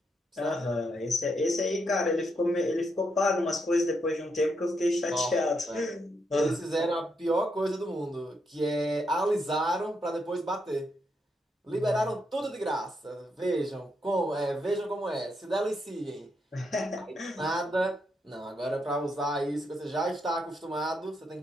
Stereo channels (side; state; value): both; normal; correlation 0.79